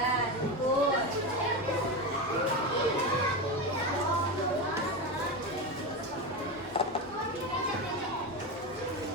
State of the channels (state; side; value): normal; both; correlation 0.18